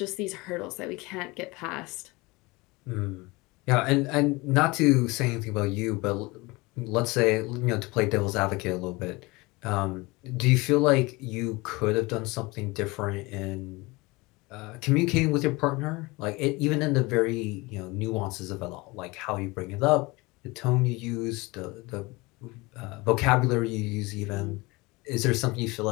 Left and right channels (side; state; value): right; quieter; 23.7 dB